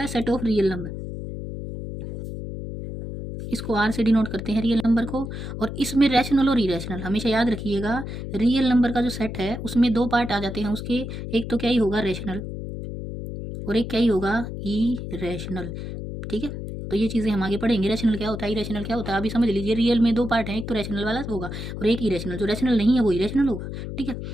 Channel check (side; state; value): left; noise; hum, 7 dB below the sound